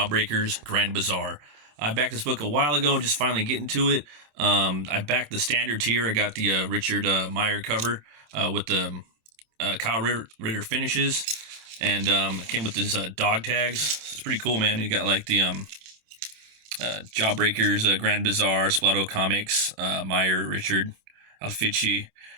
Grand Bazaar. I backed this book a while ago, just finally getting to it. I backed the standard tier. I got the Richard Meyer cover with the Kyle Ritter finishes, and it came with his dog tags. So it's pretty cool, man. You got like the Jawbreakers Grand Bazaar, Splato Comics, Meyer, Richard, Alfici,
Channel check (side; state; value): left; late; 27 ms